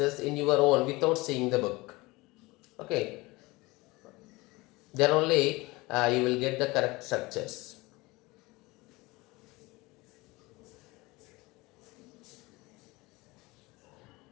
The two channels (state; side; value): quieter; right; 22.4 dB